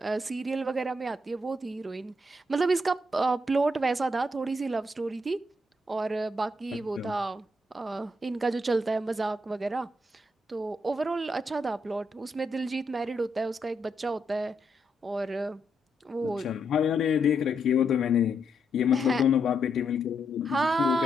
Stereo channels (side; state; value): both; normal; correlation 0.79